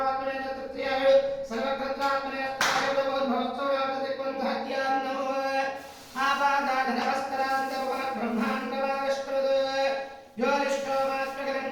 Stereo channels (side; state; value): both; identical; correlation 1.00